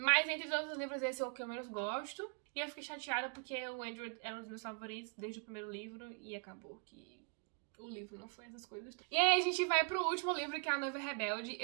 entre todos os livros, esse é o que eu menos gosto. E eu fiquei chateada porque o Andrew é um dos meus favoritos desde o primeiro livro. E acabou que o livro não foi essas coisas. E aí a gente vai pro último livro, que é A Noiva Rebelde.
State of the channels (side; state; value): left; quieter; 37.6 dB